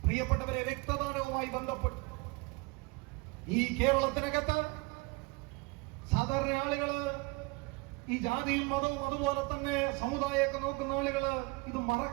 പ്രിയപ്പെട്ടവരെ, രക്തദാനവുമായി ബന്ധപ്പെട്ട് ഈ കേരളത്തിനകത്ത് സാധാരണ ആളുകള് ഈ ജാതിയും മതവും അതുപോലെ തന്നെ സമുദായമൊക്കെ നോക്കുന്ന ആളുകള് ഇത്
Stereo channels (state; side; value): quieter; left; 27.3 dB